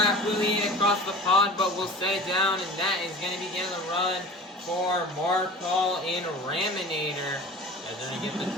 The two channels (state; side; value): normal; both; correlation 0.39